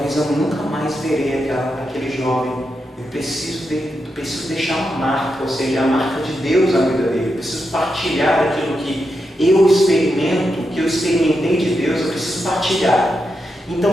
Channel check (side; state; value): both; normal; correlation 0.86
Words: eu nunca mais verei aquele jovem. Eu preciso deixar uma marca, ou seja, a marca de Deus na vida dele. Eu preciso partilhar aquilo que eu experimento, que eu experimentei de Deus, eu preciso partilhar.